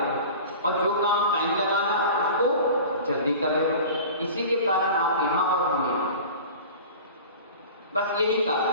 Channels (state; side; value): inverted; both; correlation -0.38